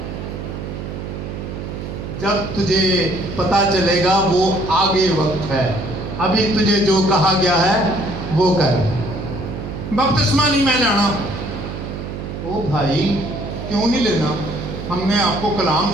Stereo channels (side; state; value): right; noise; hum, 7 dB below the sound